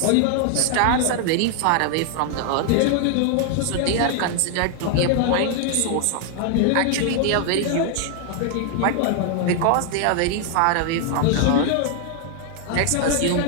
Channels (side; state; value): both; different; correlation 0.00